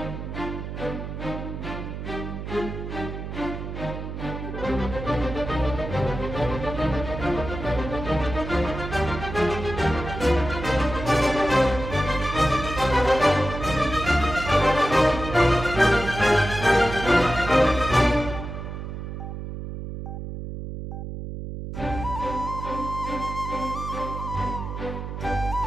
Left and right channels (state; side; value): noise; right; hum, 7 dB below the sound